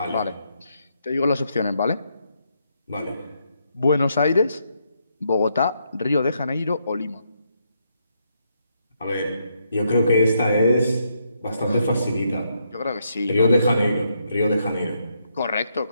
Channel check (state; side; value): inverted; both; correlation -0.77